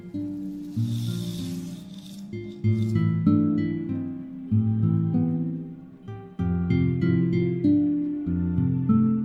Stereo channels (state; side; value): identical; both; correlation 1.00